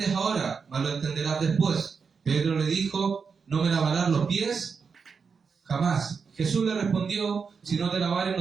ahora, mas lo entenderás después. Pedro le dijo, ¿no me lavarás los pies? Jamás. Jesús le respondió, si no te lavares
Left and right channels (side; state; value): left; quieter; 5.6 dB